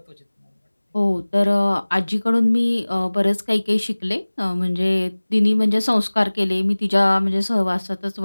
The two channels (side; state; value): both; inverted; correlation -1.00